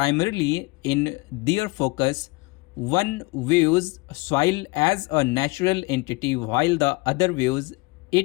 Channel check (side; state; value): right; quieter; 24.4 dB